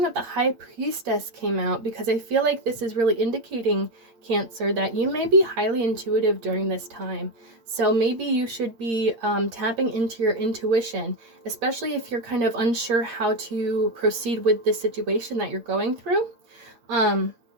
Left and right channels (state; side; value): late; left; 8.7 ms